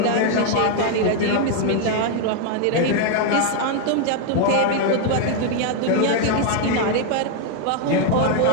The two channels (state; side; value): different; both; correlation 0.00